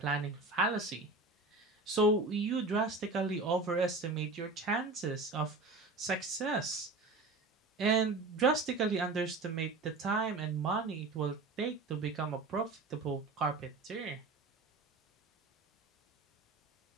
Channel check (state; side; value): quieter; left; 3.5 dB